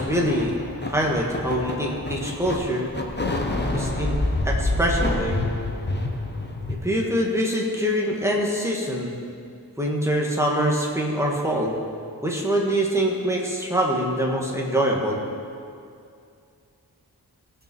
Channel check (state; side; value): normal; both; correlation 0.46